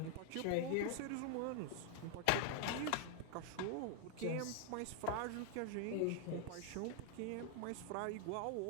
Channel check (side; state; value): both; different; correlation 0.00